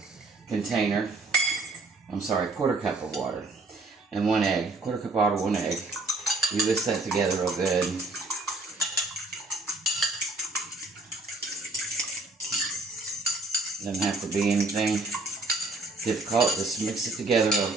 container. I'm sorry, 1/4 cup of water. And 1 egg. 1/4 cup of water, 1 egg. You whisk that together real good. Doesn't have to be anything difficult. Just mix it together real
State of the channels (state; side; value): quieter; left; 3.0 dB